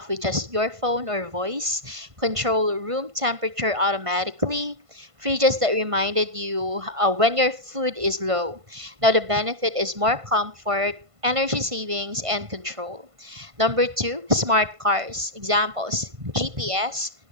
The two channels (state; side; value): late; left; 1.5 ms